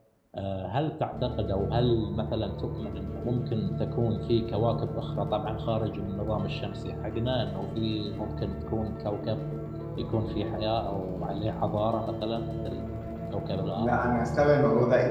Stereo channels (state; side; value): identical; both; correlation 1.00